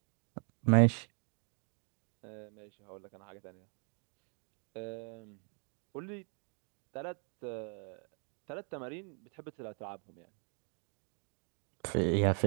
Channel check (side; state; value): left; quieter; 39.2 dB